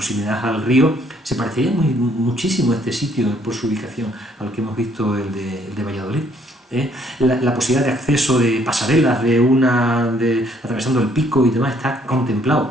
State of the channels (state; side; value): normal; both; correlation 0.66